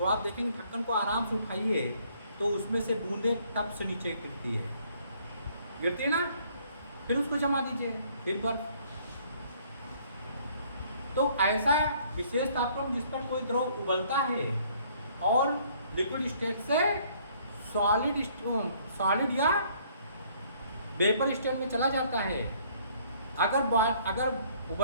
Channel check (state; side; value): inverted; both; correlation -0.62